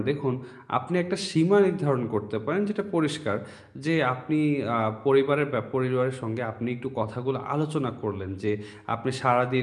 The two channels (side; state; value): both; identical; correlation 1.00